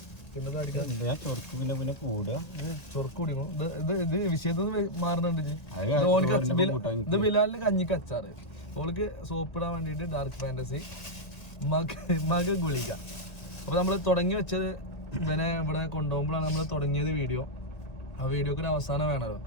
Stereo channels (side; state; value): right; late; 1.9 ms